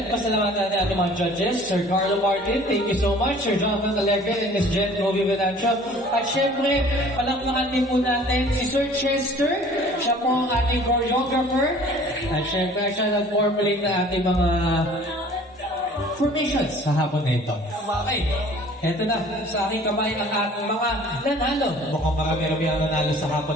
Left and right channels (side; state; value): both; normal; correlation 0.50